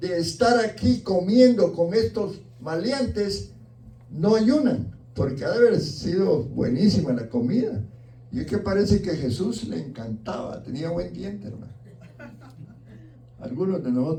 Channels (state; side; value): identical; both; correlation 1.00